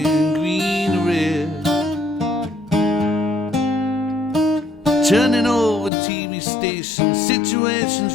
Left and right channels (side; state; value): right; drops out; at 5.9 s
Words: green to red. Turning over TV stations, situations